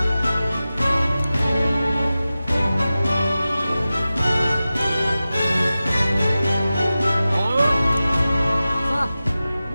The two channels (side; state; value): both; inverted; correlation -0.95